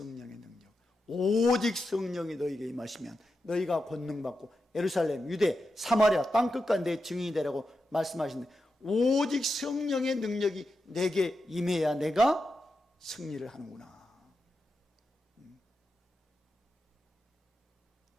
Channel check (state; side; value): normal; both; correlation 0.88